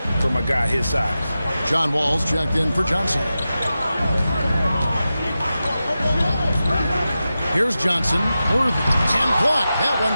from a guy his size. John Wall's checked in for Johnson. Here's Johnson. Worthy. And blocked. That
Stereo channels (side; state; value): both; inverted; correlation -0.93